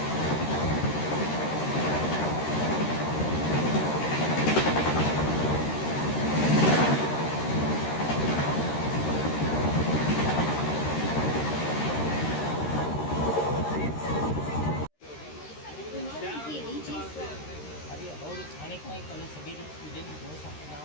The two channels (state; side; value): late; right; 13 ms